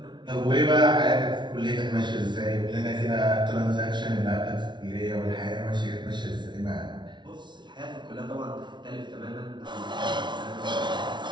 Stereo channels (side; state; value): left; late; 0.22 ms